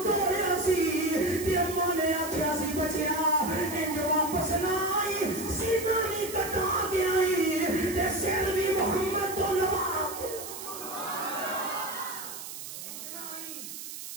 توڑیا سی تے اما نے آکھیا سی بچیا انج واپس نہ آئی سیدھا نہیں کٹا کے آئی تے سر بھی محمد تو لوا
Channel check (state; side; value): noise; right; hiss, 10 dB below the sound